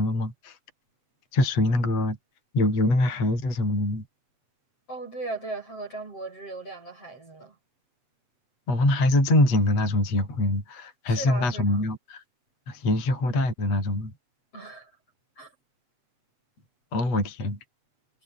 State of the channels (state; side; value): late; right; 8.1 ms